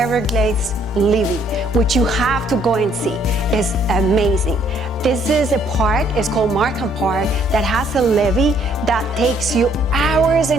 levee, which you have to go and see. It's amazing. This is a park, it's called Markham Park, that has a levee that takes you hours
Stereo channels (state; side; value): normal; both; correlation 0.65